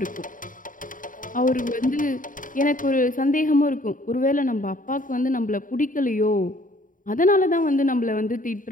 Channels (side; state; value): right; late; 0.39 ms